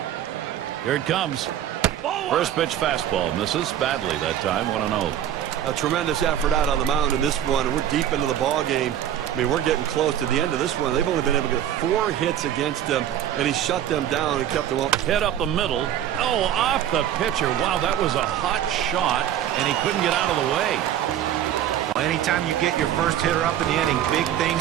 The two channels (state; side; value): quieter; left; 10.8 dB